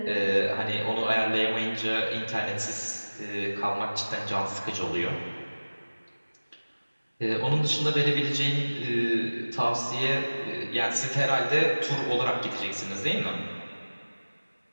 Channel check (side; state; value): both; inverted; correlation -1.00